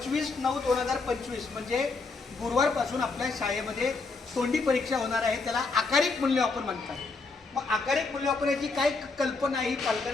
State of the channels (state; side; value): quieter; right; 4.0 dB